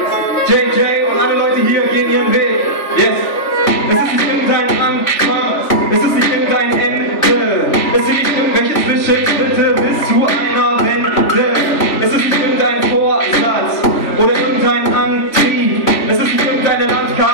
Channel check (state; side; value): late; right; 3.4 ms